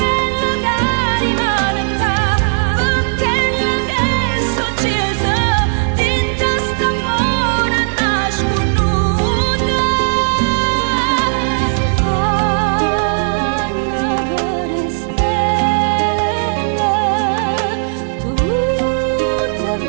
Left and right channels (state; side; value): silent; left; digital silence